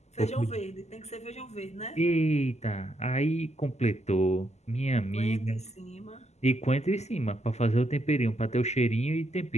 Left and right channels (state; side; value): late; right; 0.33 ms